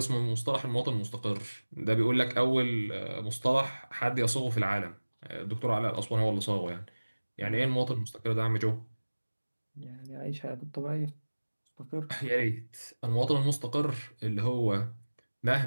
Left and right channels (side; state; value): both; inverted; correlation -1.00